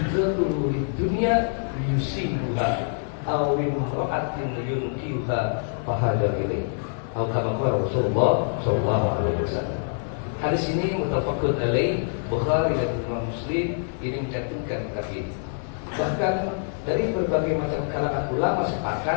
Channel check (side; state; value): right; silent; digital silence